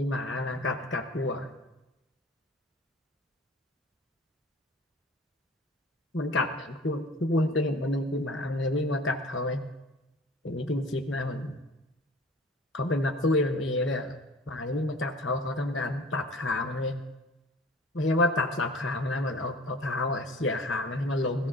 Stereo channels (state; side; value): normal; both; correlation 0.45